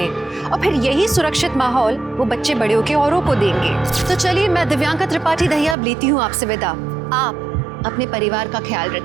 और फिर यही सुरक्षित माहौल वो बच्चे बड़े होकर औरों को देंगे। तो चलिए, मैं दिव्यांका त्रिपाठी दहिया अब लेती हूँ आपसे विदा। आप अपने परिवार का ख्याल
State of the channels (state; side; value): drops out; left; at 5.8 s